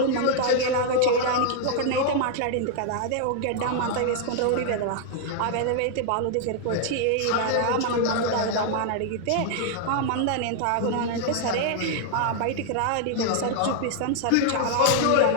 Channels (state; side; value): different; both; correlation 0.00